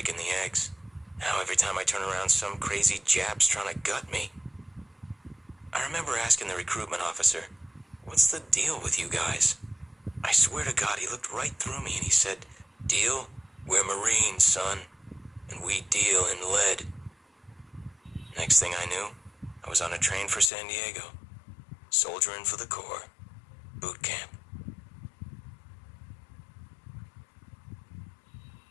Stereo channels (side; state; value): right; drops out; at 20.5 s